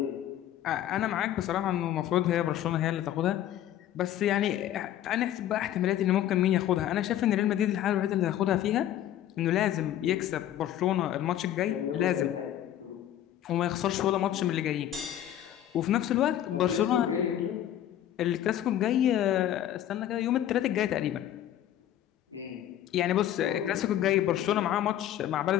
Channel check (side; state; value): right; quieter; 11.8 dB